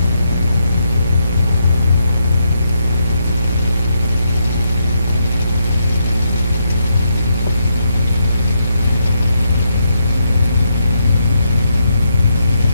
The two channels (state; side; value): inverted; both; correlation -0.79